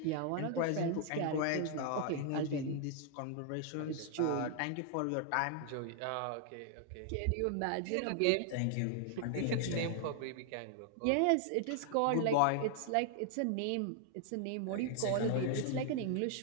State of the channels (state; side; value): different; both; correlation 0.00